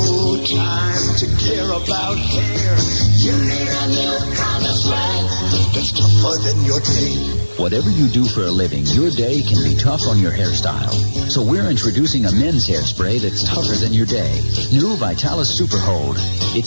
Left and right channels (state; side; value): inverted; both; correlation -1.00